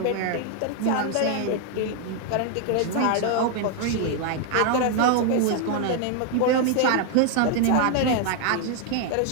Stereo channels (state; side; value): different; both; correlation 0.00